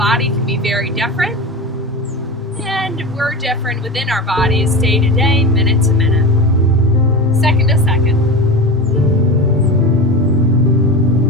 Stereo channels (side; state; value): both; normal; correlation 0.26